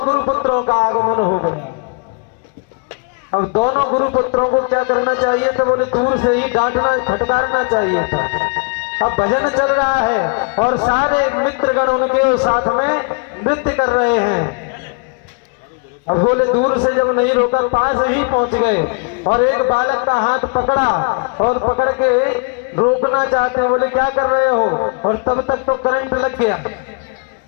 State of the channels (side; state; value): right; quieter; 35.7 dB